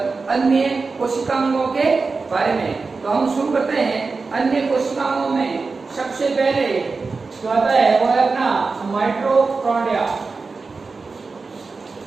कोशिकांगों के बारे में। तो हम शुरू करते हैं। अन्य कोशिकाओं में सबसे पहले जो आता है वो है अपना माइटोकॉन्ड्रिया।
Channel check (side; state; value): left; quieter; 4.2 dB